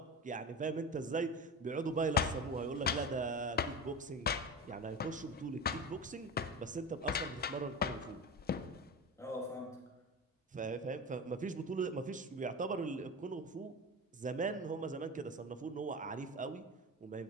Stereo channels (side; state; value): both; normal; correlation 0.26